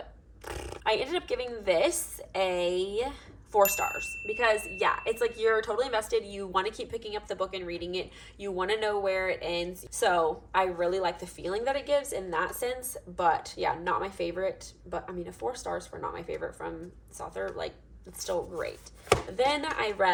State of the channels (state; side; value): identical; both; correlation 1.00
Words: I ended up giving this a 4 stars because it's like you're totally invested. You want to keep picking up the book and reading it. You want to know where it ends. So I really like the feeling that it gives in that sense. But not my favorite. But I mean, a 4 stars for not my favorite from this author, like it's still great. Then I